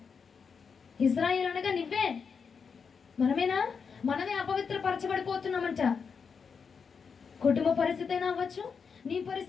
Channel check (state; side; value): quieter; right; 5.9 dB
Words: ఇజ్రాయేల్ అనగా నువ్వే, మనమేనా? మనమే అపవిత్ర పరచబడిపోతున్నామంట. కుటుంబ పరిస్థితి అయినా అవ్వచ్చు, నీ